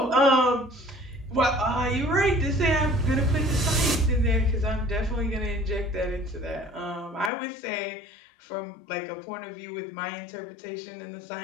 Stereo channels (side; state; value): right; drops out; at 7.3 s